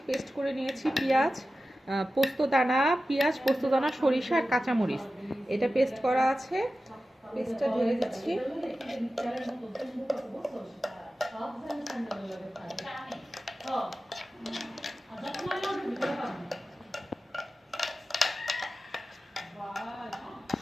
পেস্ট করে নিয়েছি পেঁয়াজ, পোস্তদানা, পোস্তদানা, সরিষা আর কাঁচামরিচ। এটা পেস্ট করা আছে, পেস্টটা ঢেলে দিচ্ছি।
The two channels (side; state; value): both; normal; correlation 0.94